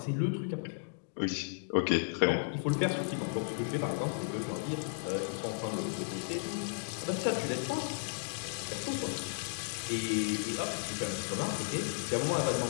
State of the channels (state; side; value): silent; right; digital silence